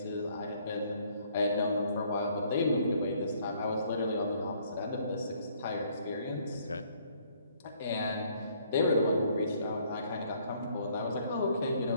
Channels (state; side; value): inverted; both; correlation -0.64